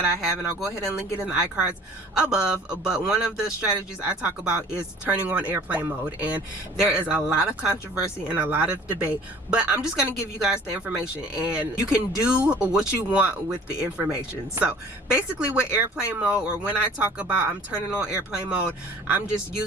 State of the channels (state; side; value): normal; both; correlation 0.49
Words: I have, and I'll go ahead and link it in the iCards above, but one of the strategies I talk about is turning on airplane mode, and there is a lot of controversy and a lot of debate, but I'm just going to give you guys the information, and you can do what you want with the information. So basically with airplane mode, or when I talk about I'm turning on airplane mode, I'm just